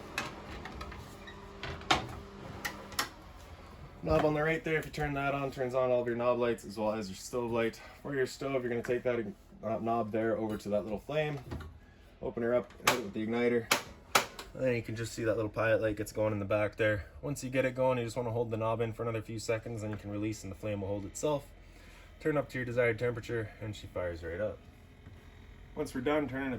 Knob on the right there, if you turn that on, turns on all of your knob lights as well as your stove light. For your stove, you're going to take that knob there over to that little flame, open her up, hit it with the igniter. And then you can just see that little pilot light gets going in the back there. Once you get it going, you just want to hold the knob in for another few seconds, then you can release and the flame will hold itself. Turn up to your desired temperature and she fires right up. Once we're done, turning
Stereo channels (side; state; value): both; identical; correlation 1.00